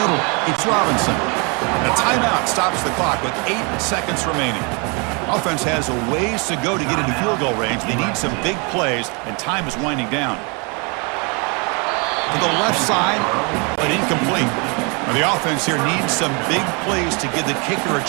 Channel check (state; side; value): quieter; left; 32.5 dB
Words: It's Robinson. And a timeout stops the clock with 8 seconds remaining. Offense has a ways to go to get into field goal range. They need some big plays, and time is winding down. To the left side, but incomplete. Well, the offense here needs some big plays to give the kicker a